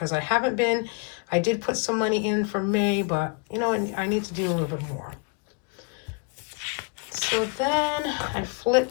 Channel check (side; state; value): right; quieter; 31.0 dB